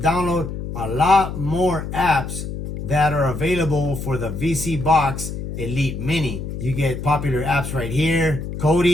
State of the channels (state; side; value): noise; left; hum, 7 dB below the sound